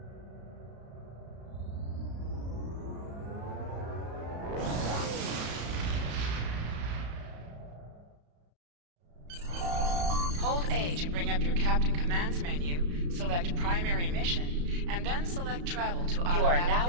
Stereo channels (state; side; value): late; left; 34 ms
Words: Hold A to bring up your Captain Commands menu, select Primary Mission, and then select Travel to automatically You are